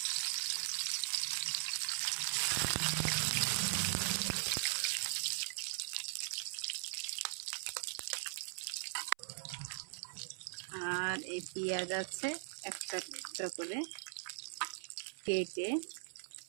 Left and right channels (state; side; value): silent; left; 51 dB below the other